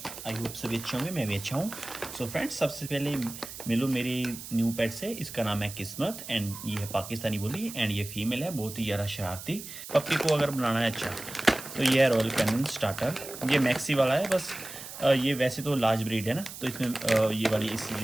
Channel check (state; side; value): noise; right; hiss, 12 dB below the sound